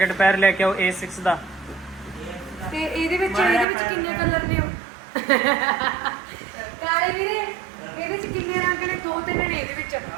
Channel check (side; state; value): left; drops out; at 3.7 s